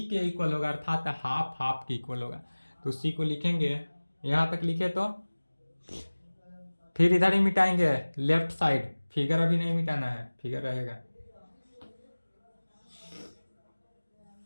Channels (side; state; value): both; inverted; correlation -1.00